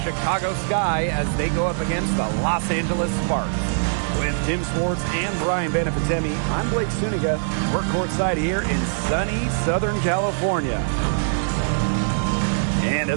Sky as they go up against the Los Angeles Sparks. With Tim Swartz and Brian Benefitemi, I'm Blake Suniga. We're courtside here in sunny Southern California. And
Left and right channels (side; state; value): left; silent; digital silence